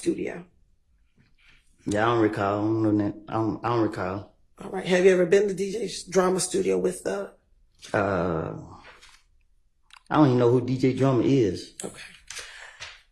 Yeah, I don't recall. I don't know that. I don't recall. All right. Have you ever been to DJ Drama Studio with the? I don't even know who DJ Drummer is. Okay.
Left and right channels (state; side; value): identical; both; correlation 1.00